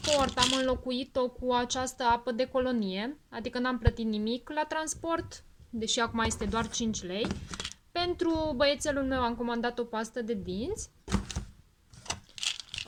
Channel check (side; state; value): both; identical; correlation 1.00